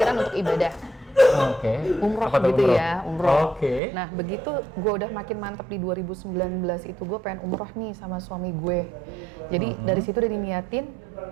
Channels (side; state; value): left; drops out; at 3.8 s